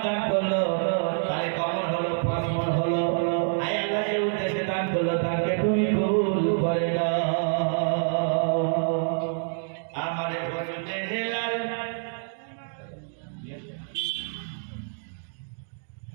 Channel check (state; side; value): silent; left; digital silence